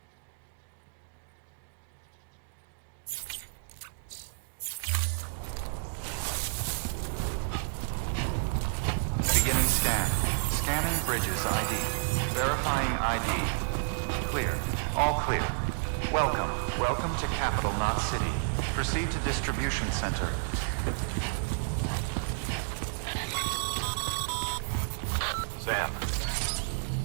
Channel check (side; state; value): left; silent; digital silence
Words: Beginning scan. Scanning bridges ID. Verifying ID. Clear. All clear. Welcome. Welcome to Capital, not City. Proceed to distribution center. Sam,